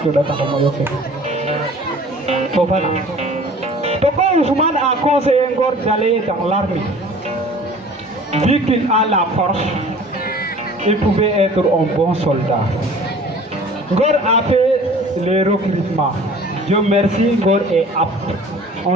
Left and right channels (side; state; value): both; normal; correlation 0.47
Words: da tax mo yoké fofana Toko Ousmane a conseillé Ngor d'aller dans l'armée vu qu'il a la force il pouvait être un bon soldat. Ngor a fait les recrutements. Dieu merci, Ngor est apte. On